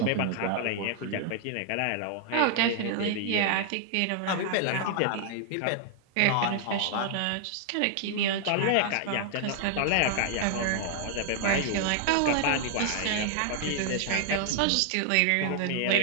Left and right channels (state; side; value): different; both; correlation 0.00